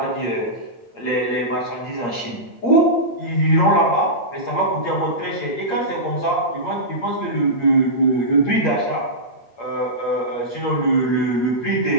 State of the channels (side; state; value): right; late; 8.6 ms